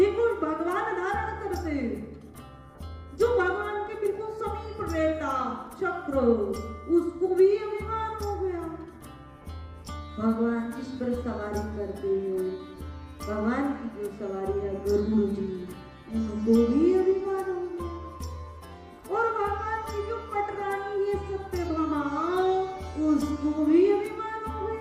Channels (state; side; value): identical; both; correlation 1.00